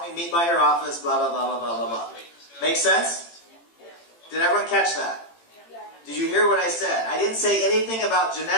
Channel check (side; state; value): right; late; 18 ms